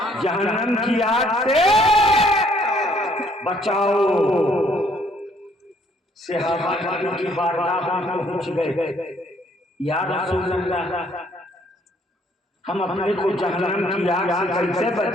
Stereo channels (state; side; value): normal; both; correlation 0.64